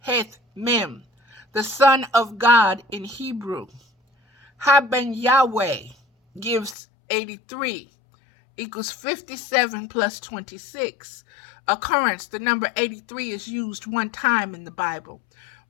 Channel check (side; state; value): right; drops out; at 6.8 s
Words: heth mem. The Son of God in Hebrew. Haben Yahweh gives 83. Equals 57 plus 26. Occurrence, the number 83 is used one time in the Bible.